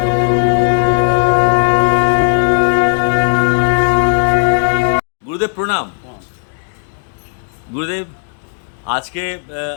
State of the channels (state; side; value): silent; right; digital silence